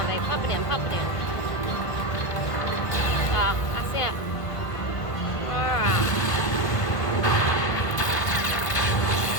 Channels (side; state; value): right; late; 1.5 ms